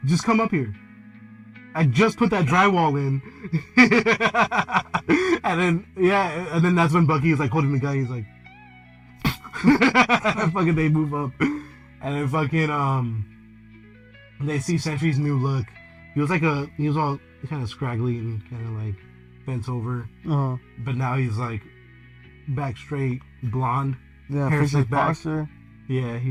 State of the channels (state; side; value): identical; both; correlation 1.00